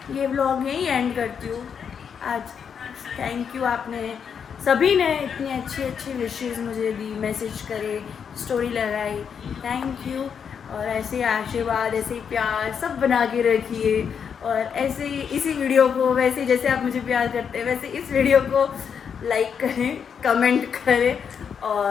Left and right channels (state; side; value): quieter; right; 7.1 dB